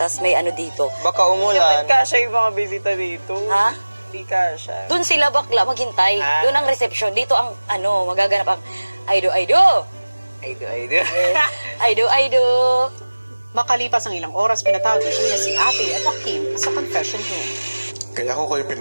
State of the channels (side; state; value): both; inverted; correlation -1.00